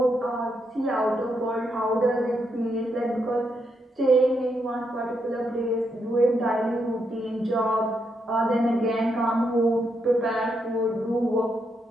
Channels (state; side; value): normal; both; correlation 0.80